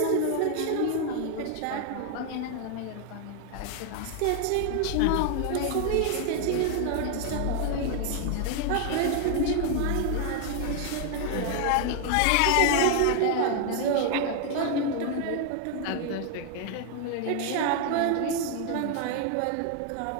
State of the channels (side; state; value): both; different; correlation 0.00